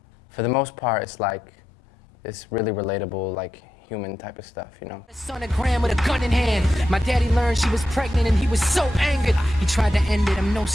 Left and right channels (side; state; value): both; normal; correlation 0.87